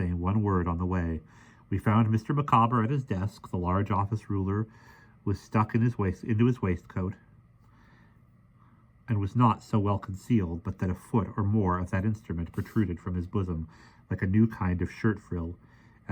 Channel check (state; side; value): identical; both; correlation 1.00